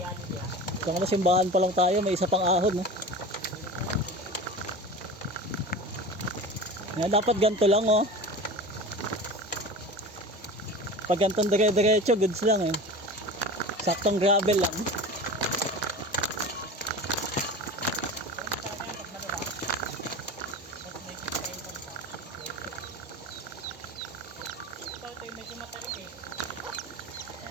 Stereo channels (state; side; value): normal; both; correlation 0.33